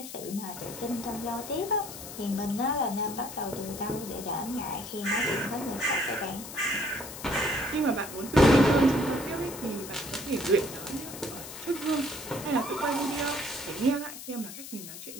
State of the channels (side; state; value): left; noise; hiss, 11 dB below the sound